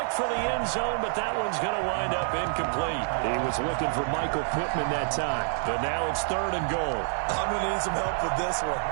for the end zone, but that one's going to wind up incomplete. He was looking for Michael Pittman that time, but now it's third and goal. I'm going to need some help with this one.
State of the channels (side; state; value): left; silent; 60 dB below the other